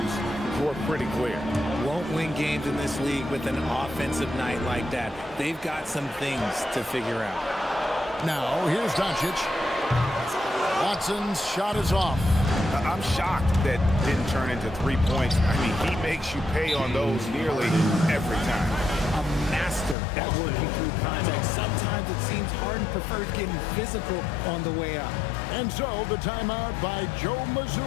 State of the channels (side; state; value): right; drops out; at 20.0 s